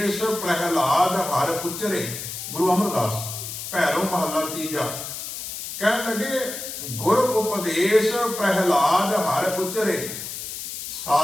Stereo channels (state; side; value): noise; left; hiss, 8 dB below the sound